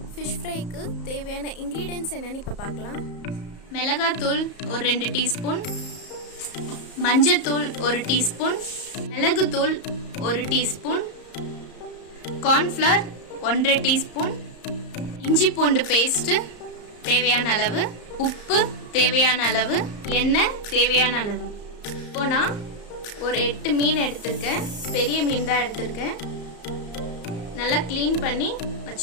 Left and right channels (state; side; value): late; right; 34 ms